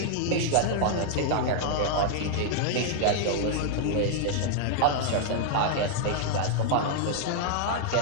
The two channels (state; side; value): different; both; correlation -0.01